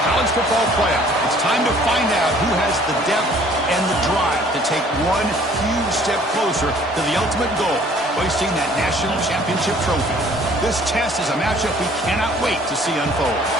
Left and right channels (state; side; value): normal; both; correlation 0.55